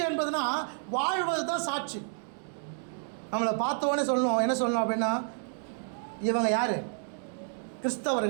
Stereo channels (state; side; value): silent; left; digital silence